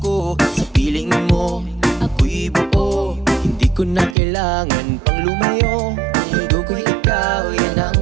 sa piling mo ako'y buo. Hindi ko na kailangan pang lumayo, ang mundo ko'y ikaw, yan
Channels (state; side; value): drops out; left; at 4.2 s